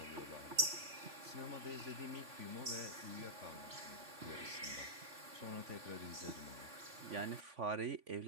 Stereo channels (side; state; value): left; late; 3.5 ms